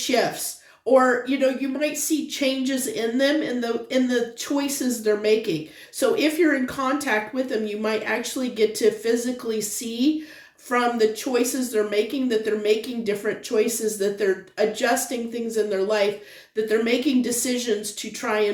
or you might see changes in them, in the choices they're making. So if you're in contact with them, you might actually get to physically see from the choices they're making that they're making different choices, that they're adjusting things in their life, that they're making decisions to try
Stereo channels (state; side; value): identical; both; correlation 1.00